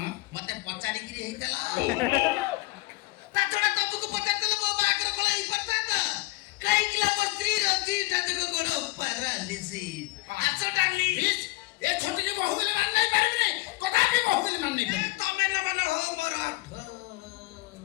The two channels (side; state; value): right; quieter; 21.3 dB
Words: मते पचारी की हेतला ताछड़ा तबुक पचारतल बो बाकर कोला ही पचारत काई किला बस्त्री रजी टाजको गोड़ पारालिसी आछो डाली ଇସ୍, ଏ ଛୋଟିକି ବହୁ ବୋଲି ମାନ ନେଇ ପାରିବିନି କଦାପି ବହୁ ବୋଲି ମାନ ନେଇ ए ପାରିବି तमे न मन हो मोर